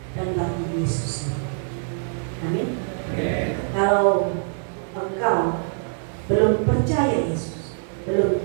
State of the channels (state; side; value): silent; left; digital silence